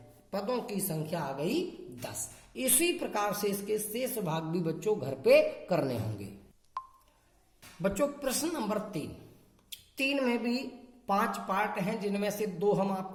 पदों की संख्या आ गई 10। इसी प्रकार से इसके शेष भाग भी बच्चों घर पे करने होंगे। बच्चों प्रश्न नंबर 3 में भी 5 पार्ट हैं, जिनमें से 2 हम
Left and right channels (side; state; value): both; identical; correlation 1.00